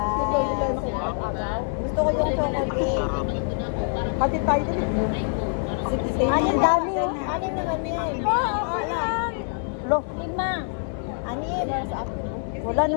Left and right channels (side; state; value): right; silent; 57 dB below the other